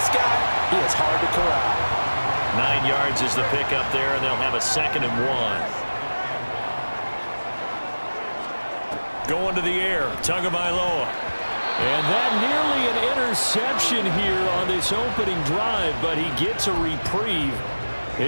guy, he is hard to corral. 9 yards is the pickup there, and they'll have a 2nd and 1. Going to the air, Tagovailoa. And that nearly an interception here on this opening drive, but he gets a reprieve.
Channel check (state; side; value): inverted; both; correlation -1.00